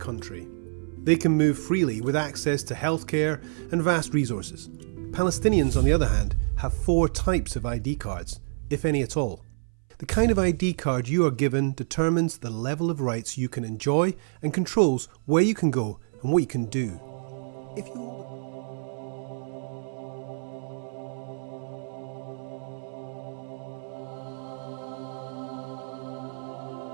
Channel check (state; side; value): silent; left; 58 dB below the other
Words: They can move freely with access to healthcare and vast resources. Palestinians, on the other hand, have 4 types of ID cards, if any at all. The kind of ID card you are given determines the level of rights you can enjoy and controls where you can go and what you can do. If you